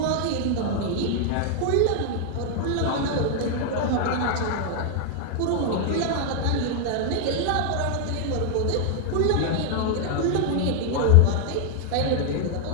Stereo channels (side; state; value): both; different; correlation 0.00